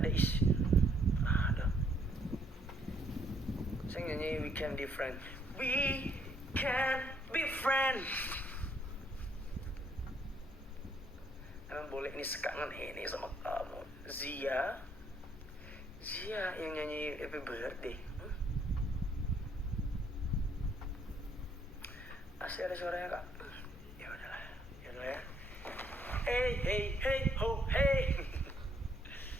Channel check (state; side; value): normal; both; correlation 0.69